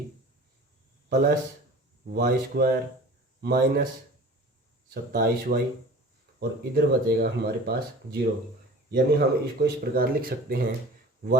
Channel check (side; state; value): both; normal; correlation 0.41